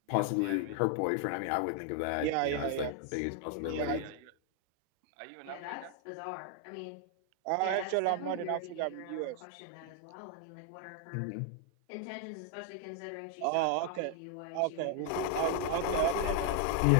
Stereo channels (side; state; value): both; different; correlation 0.00